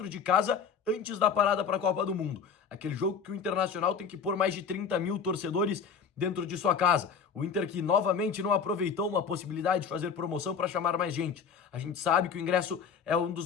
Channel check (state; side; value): quieter; right; 6.3 dB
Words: de casa, antes da parada para a Copa do Mundo. Aquele jogo que o Internacional tem que pôr mais de 30 mil torcedores dentro de sua casa. O Inter que novamente não aproveitou uma possibilidade de fazer promoção para chamar mais gente. A gente sabe que o ingresso é um